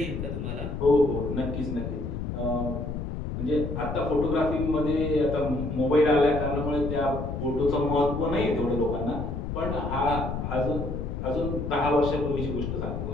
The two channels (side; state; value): left; noise; rumble, 4 dB below the sound